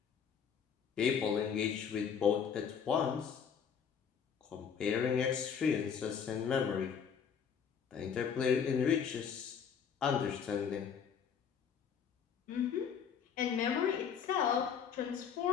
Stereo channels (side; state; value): right; quieter; 7.2 dB